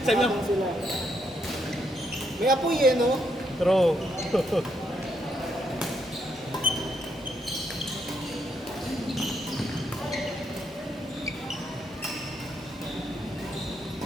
ko, Sila. May apoy eh, no? True.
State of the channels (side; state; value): both; normal; correlation 0.77